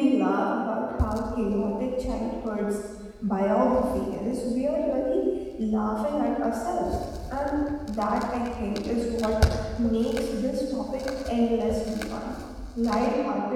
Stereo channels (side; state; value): both; identical; correlation 1.00